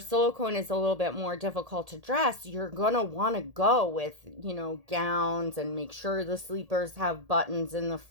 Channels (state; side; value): late; left; 1.8 ms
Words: is a little bit more difficult to dress, you're gonna want to go with, gowns, and make sure the sleepers have buttons in the